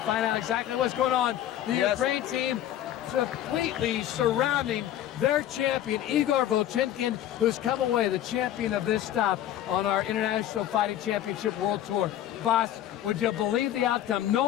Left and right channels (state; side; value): quieter; right; 11.9 dB